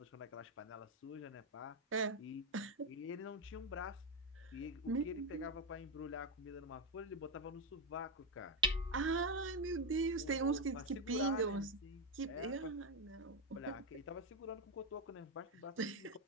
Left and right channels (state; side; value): normal; both; correlation 0.07